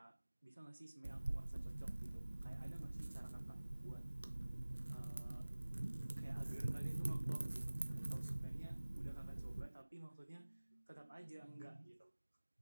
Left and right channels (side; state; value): both; inverted; correlation -1.00